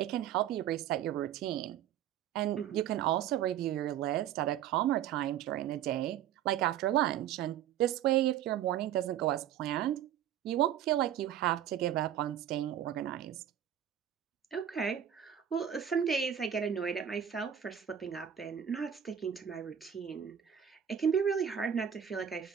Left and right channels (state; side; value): quieter; left; 10.0 dB